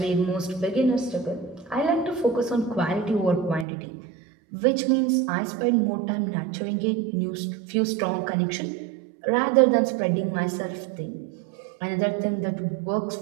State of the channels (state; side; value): drops out; left; at 3.7 s